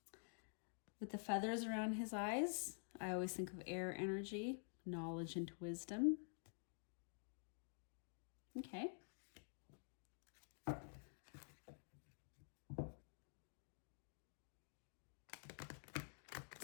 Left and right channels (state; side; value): silent; right; digital silence